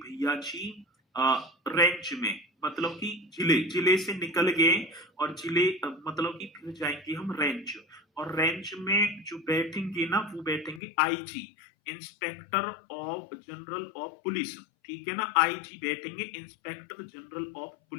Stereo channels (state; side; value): drops out; right; at 10.8 s